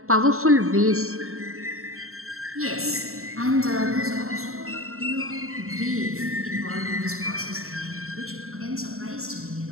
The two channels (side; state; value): left; late; 0.63 ms